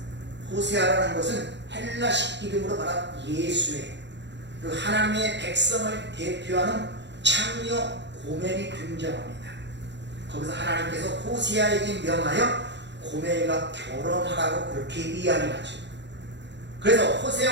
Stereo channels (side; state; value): left; late; 0.52 ms